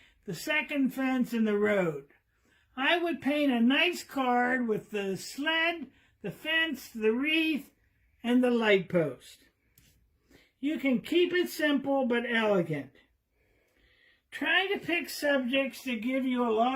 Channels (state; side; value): identical; both; correlation 1.00